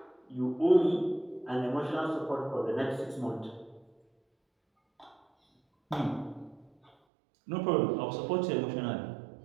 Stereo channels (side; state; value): left; drops out; at 6.9 s